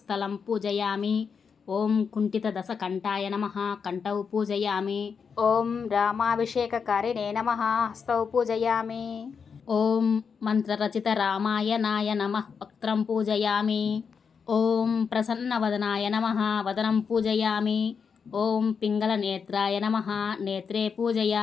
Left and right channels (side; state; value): right; quieter; 6.1 dB